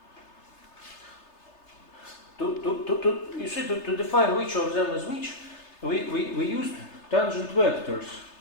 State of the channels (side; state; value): right; late; 3.3 ms